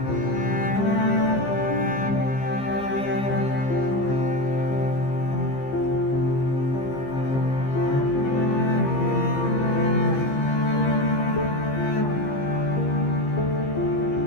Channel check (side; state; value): right; late; 15 ms